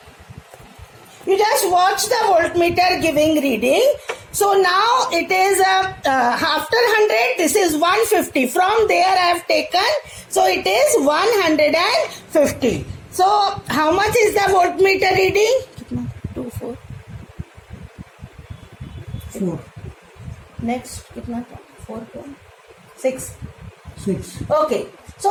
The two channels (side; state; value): both; identical; correlation 1.00